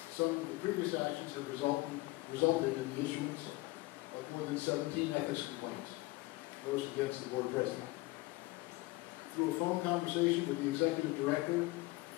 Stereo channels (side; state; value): right; quieter; 21.0 dB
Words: Some of the previous actions have resulted in the issuance of more than 17 ethics complaints, most against the board president. Through a phone conversation with the executive director